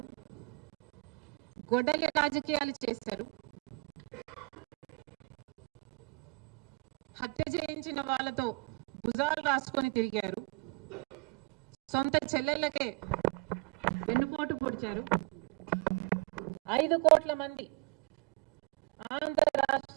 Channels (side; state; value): left; quieter; 26.1 dB